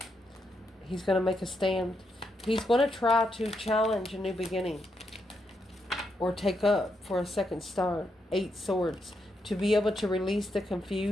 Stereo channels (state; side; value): normal; both; correlation 0.81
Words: He's going to make a stand. He's going to try to challenge a new beginning. Or take up for a second start. 8 swords. To be able to release the